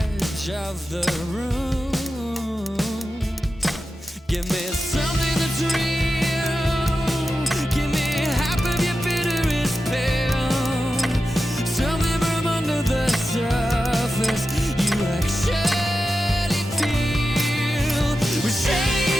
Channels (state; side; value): normal; both; correlation 0.92